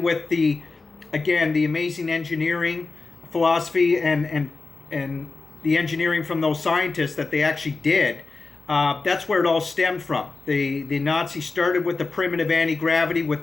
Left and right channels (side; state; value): right; quieter; 3.9 dB